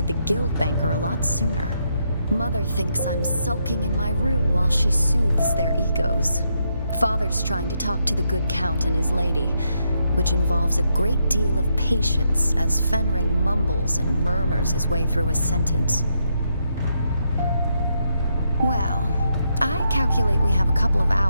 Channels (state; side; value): inverted; both; correlation -0.79